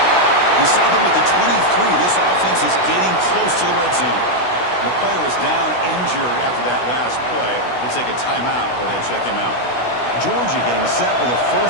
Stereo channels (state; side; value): late; right; 16 ms